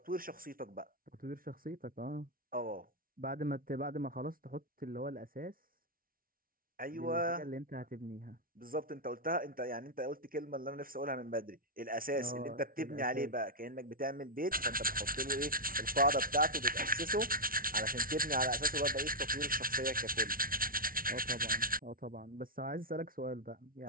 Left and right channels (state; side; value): late; left; 0.42 ms